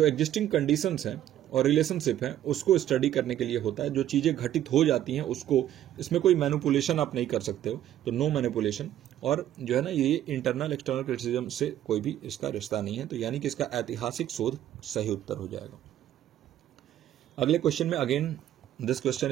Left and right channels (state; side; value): quieter; left; 11.9 dB